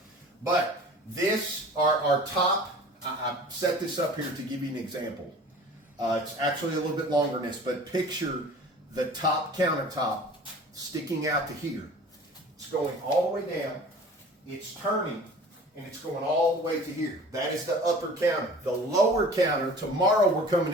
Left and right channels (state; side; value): normal; both; correlation 0.44